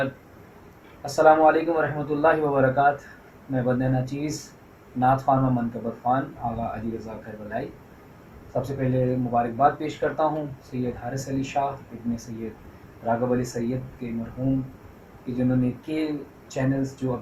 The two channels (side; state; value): both; identical; correlation 1.00